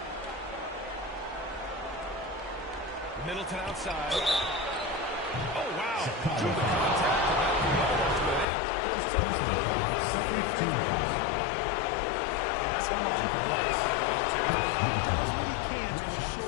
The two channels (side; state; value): right; drops out; at 8.5 s